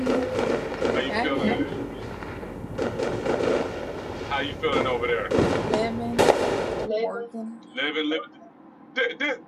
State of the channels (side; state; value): both; identical; correlation 1.00